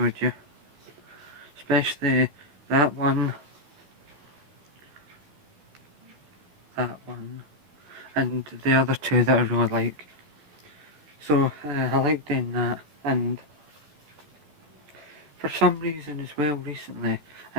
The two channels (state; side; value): late; left; 13 ms